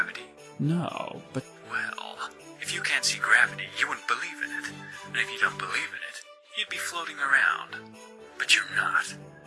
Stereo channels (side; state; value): both; identical; correlation 1.00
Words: No, but Well, if you can't see gravity, you wouldn't believe in it. And if you don't believe in it, you'd be floating around. But you're not.